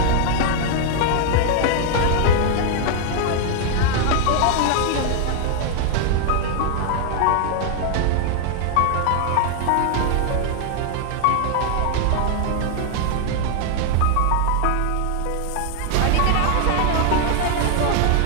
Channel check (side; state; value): both; different; correlation 0.00